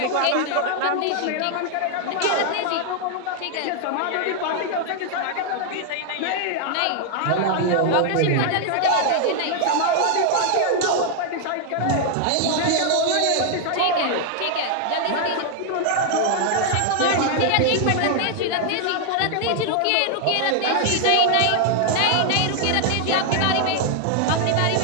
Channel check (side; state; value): both; different; correlation 0.00